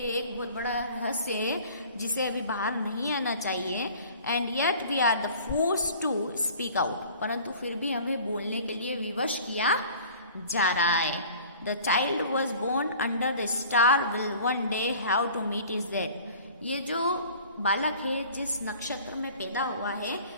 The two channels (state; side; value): inverted; both; correlation -0.47